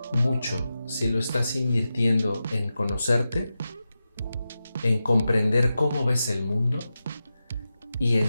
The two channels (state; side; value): inverted; both; correlation -0.92